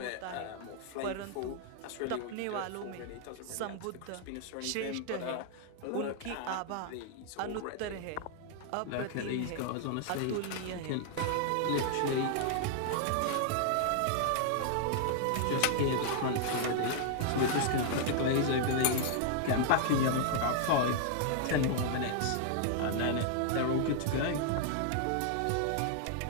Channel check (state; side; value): different; both; correlation -0.01